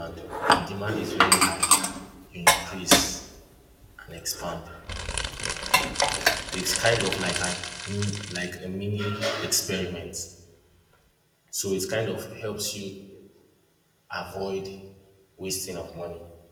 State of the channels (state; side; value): identical; both; correlation 1.00